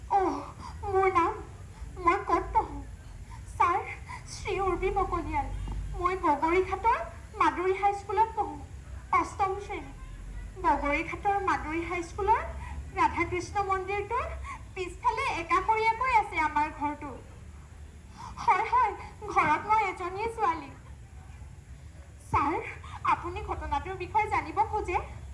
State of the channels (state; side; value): identical; both; correlation 1.00